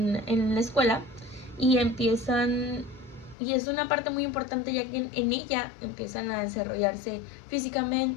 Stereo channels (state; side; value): drops out; right; at 3.4 s